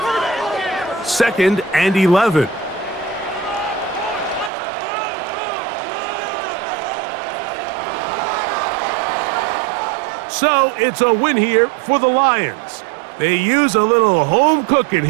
Second and 11. So it's a win here for the Lions. They use a little home cooking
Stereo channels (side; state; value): left; drops out; at 4.5 s